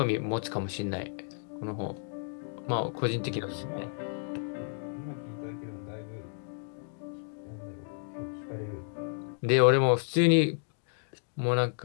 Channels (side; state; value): right; silent; digital silence